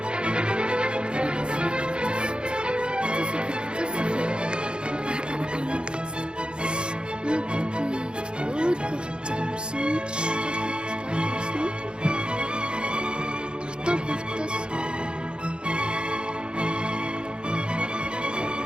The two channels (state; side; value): late; left; 0.052 ms